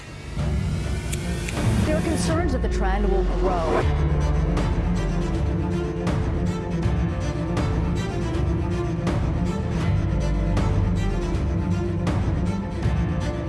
There are concerns that the trend will grow.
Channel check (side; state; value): both; identical; correlation 1.00